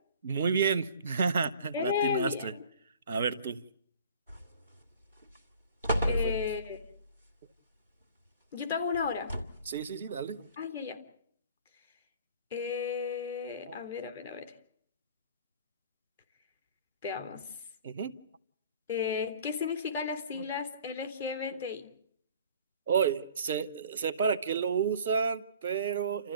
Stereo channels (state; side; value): inverted; both; correlation -0.49